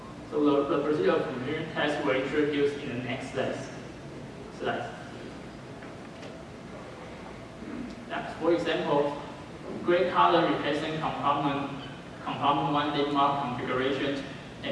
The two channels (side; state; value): both; identical; correlation 1.00